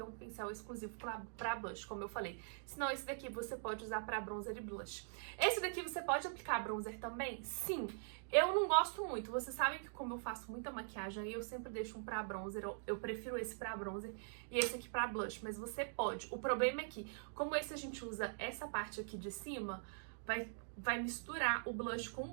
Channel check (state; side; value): silent; left; digital silence